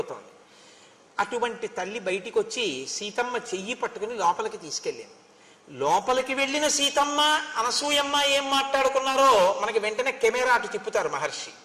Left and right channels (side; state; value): both; identical; correlation 1.00